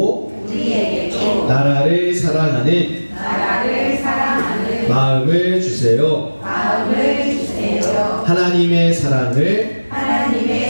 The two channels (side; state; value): both; inverted; correlation -1.00